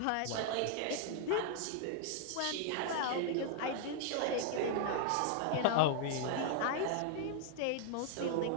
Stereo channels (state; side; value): different; both; correlation 0.00